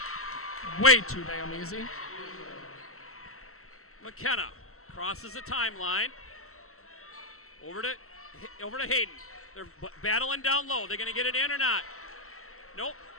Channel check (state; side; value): late; right; 0.63 ms